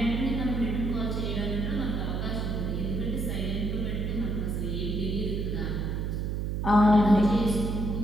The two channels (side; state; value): right; noise; hum, 1 dB below the sound